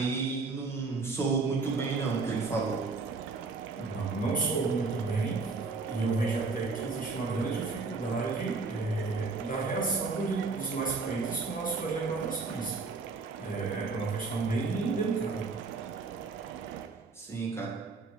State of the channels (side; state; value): left; quieter; 4.1 dB